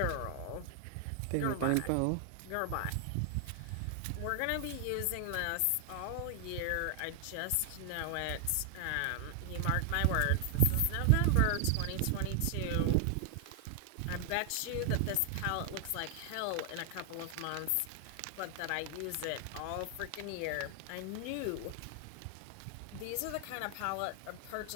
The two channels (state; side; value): different; both; correlation 0.00